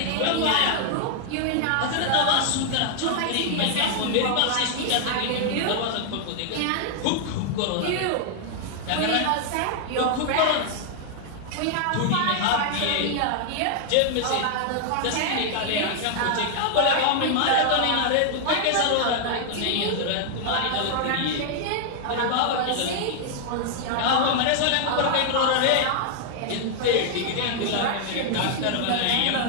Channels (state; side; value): different; both; correlation 0.00